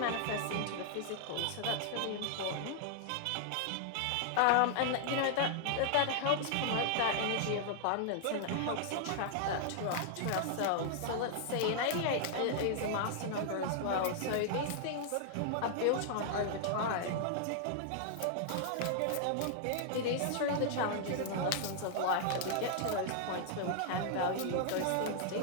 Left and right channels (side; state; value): both; different; correlation -0.01